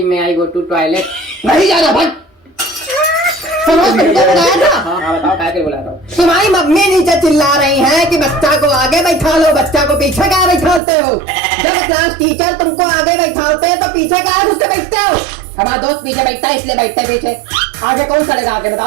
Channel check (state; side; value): drops out; left; at 10.8 s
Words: मैं आई गो टू टॉयलेट। नहीं जाना भाई। सनोज तुमको बुलाया था? हाँ बताओ क्या बुला रहा हूँ। तुम्हारी मम्मी नीचे चिल्ला रही है कि बच्चा को आगे बैठा लो, बच्चा को पीछे क्या बैठाते हो? जब क्लास टीचर तुमको आगे बैठाते हैं तो पीछे क्या घुसते बैठते हो? हमारा दोस्त पीछे बैठता है इसलिए बैठता है पीछे, आगे कौन सड़ेगा? आगे